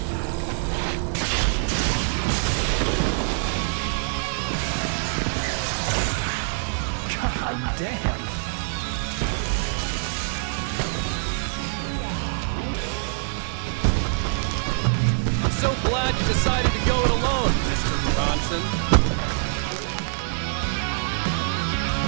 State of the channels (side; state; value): left; silent; 59 dB below the other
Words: God damn. So glad you decided to go it alone, Mr. Bronson. Shut up and shoot!